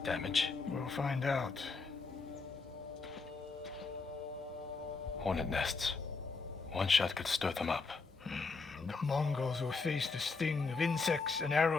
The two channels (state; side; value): quieter; right; 4.3 dB